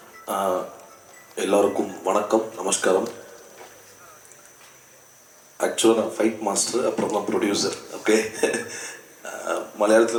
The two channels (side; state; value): both; identical; correlation 1.00